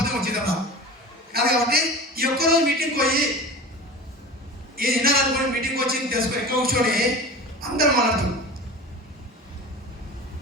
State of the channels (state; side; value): normal; both; correlation 0.34